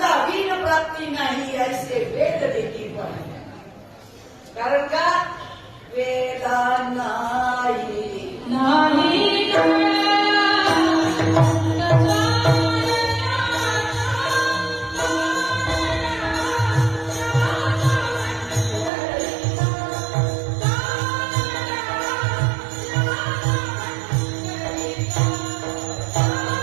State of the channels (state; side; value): drops out; left; at 18.9 s